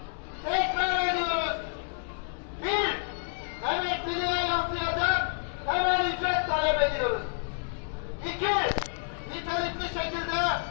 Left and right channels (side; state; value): right; silent; digital silence